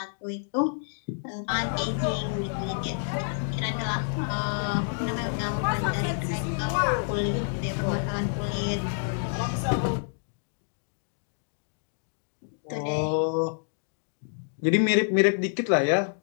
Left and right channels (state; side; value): silent; right; digital silence